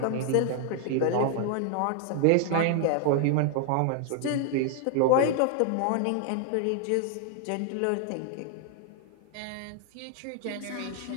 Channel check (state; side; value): different; both; correlation 0.00